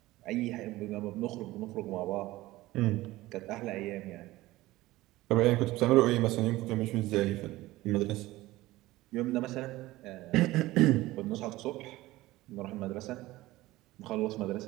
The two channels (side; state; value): left; quieter; 18.0 dB